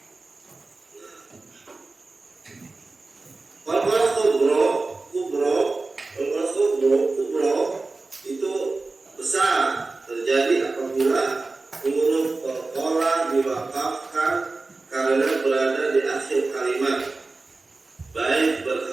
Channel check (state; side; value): quieter; left; 3.6 dB